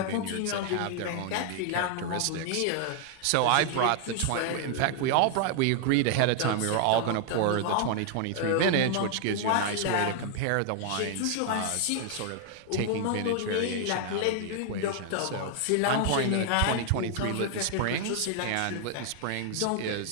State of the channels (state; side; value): different; both; correlation 0.00